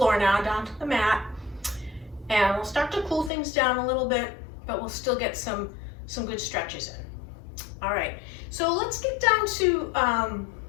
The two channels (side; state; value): right; drops out; at 3.3 s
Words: now, down to the mat, and we'll start to cool things down a little bit, but we'll still get some good stretches in. All right, so let's get down to,